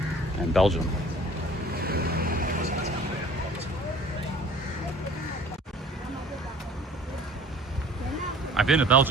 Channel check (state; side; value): normal; both; correlation 0.49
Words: and Belgium. I've been to